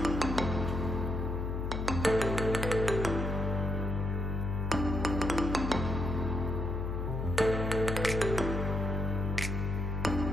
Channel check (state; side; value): noise; left; hum, 2 dB below the sound